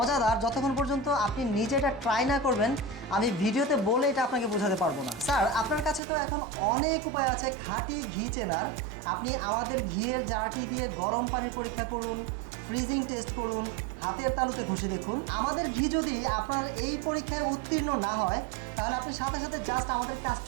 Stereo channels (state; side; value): drops out; left; at 6.0 s